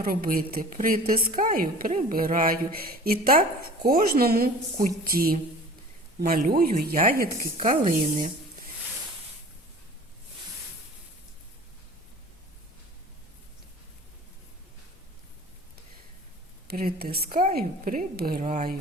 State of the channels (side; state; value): both; normal; correlation 0.43